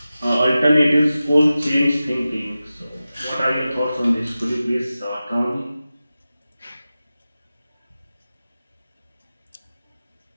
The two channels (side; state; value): both; inverted; correlation -0.94